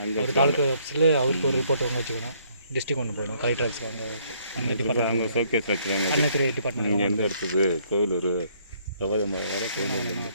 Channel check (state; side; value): inverted; both; correlation -0.66